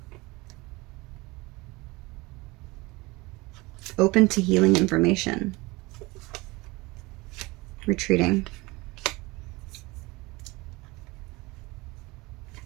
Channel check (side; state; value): left; quieter; 23.0 dB